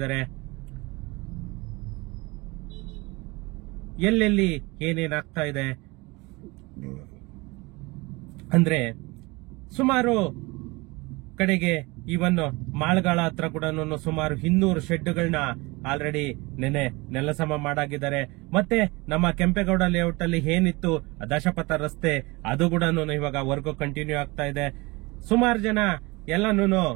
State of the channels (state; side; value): quieter; left; 24.3 dB